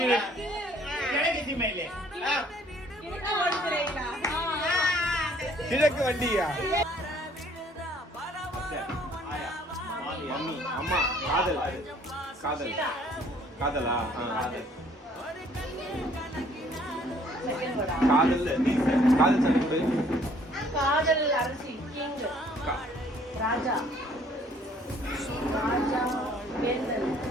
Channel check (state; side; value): normal; both; correlation 0.60